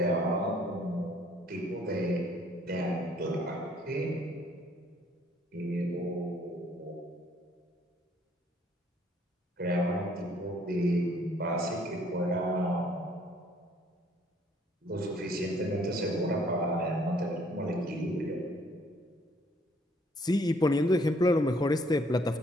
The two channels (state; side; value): normal; both; correlation 0.63